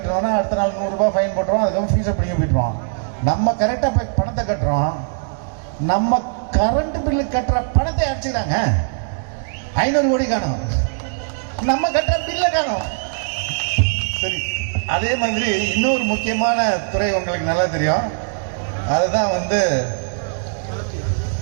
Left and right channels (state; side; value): silent; left; digital silence